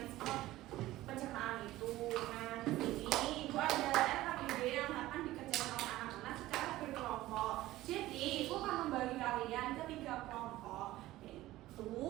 pencernaan itu. Nah di sini ibu ada RKPD yang akan dikerjakan oleh anak-anak secara berkelompok. Jadi ibu akan membagi kalian ke 3 kelompok,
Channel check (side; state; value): left; quieter; 16.4 dB